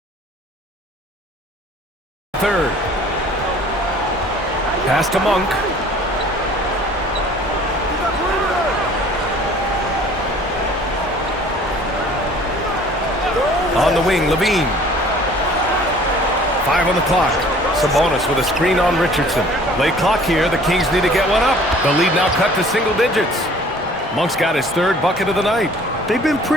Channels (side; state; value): both; normal; correlation 0.51